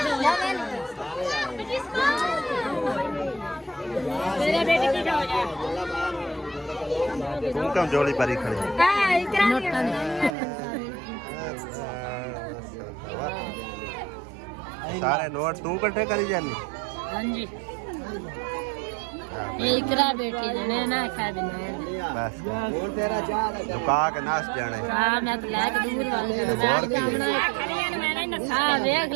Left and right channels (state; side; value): drops out; left; at 10.4 s